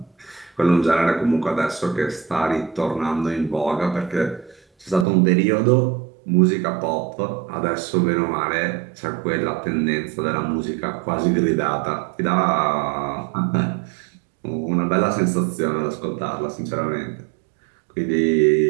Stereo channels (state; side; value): drops out; left; at 5.1 s